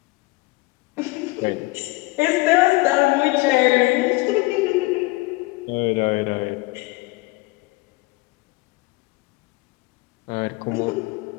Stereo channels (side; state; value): right; quieter; 23.6 dB